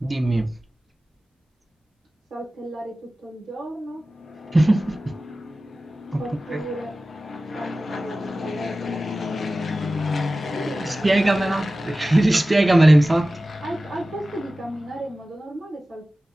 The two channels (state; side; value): normal; both; correlation 0.96